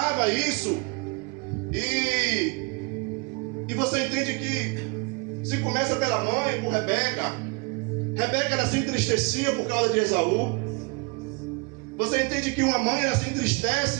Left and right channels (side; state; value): left; quieter; 29.0 dB